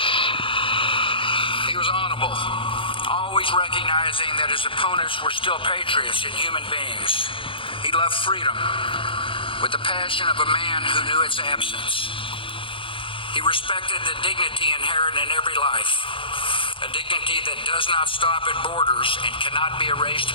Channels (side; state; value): right; late; 0.25 ms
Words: He was honorable, always recognizing that his opponents were still patriots and human beings. He loved freedom with the passion of a man who knew its absence. He respected the dignity inherent in every life, a dignity that does not stop at borders and cannot be erased